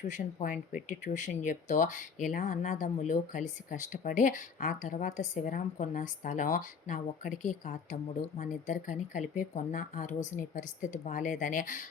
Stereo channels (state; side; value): quieter; right; 5.9 dB